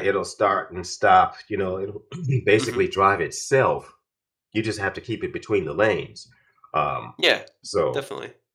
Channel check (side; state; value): both; identical; correlation 1.00